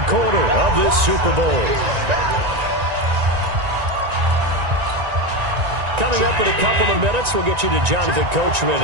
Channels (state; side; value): late; left; 1.9 ms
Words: quarter of this Super Bowl. Coming up in a couple of minutes, we'll get you to Jonathan Coachman